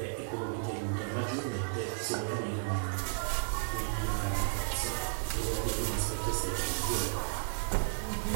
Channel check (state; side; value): silent; left; digital silence